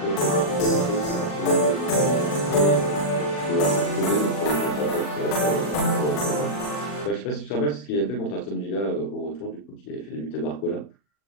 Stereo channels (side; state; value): right; late; 40 ms